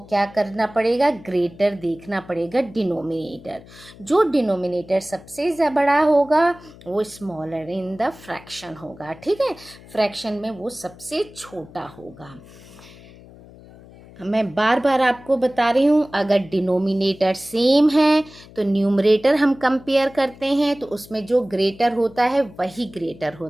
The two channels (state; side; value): noise; left; hum, 21 dB below the sound